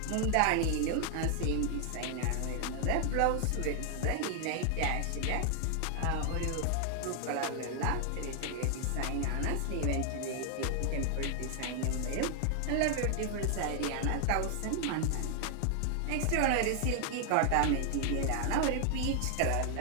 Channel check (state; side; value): different; both; correlation 0.00